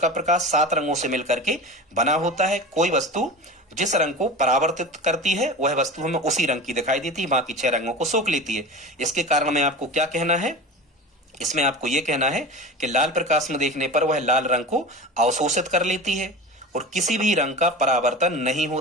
प्रकाश 7 रंगों से मिलकर के बना होता है, कोई वस्तु जिस रंग को परावर्तित करती है वह वस्तु हमें उसी रंग की दिखाई देती है, बाकी 6 रंगों को सोख लेती है। इसके कारण में आपको क्या कहना है, इसमें आपको यह कहना है कि लाल प्रकाश में देखने पर वह लाल रंग को अवशोषित कर लेती है और किसी भी रंग का परावर्तन नहीं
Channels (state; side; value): normal; both; correlation 0.31